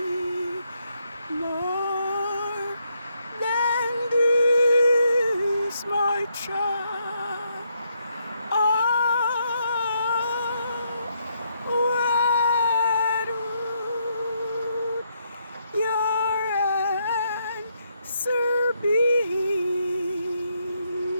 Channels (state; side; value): inverted; both; correlation -0.77